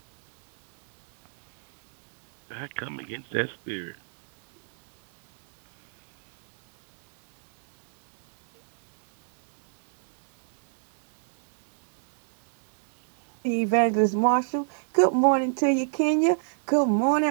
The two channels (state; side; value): silent; left; digital silence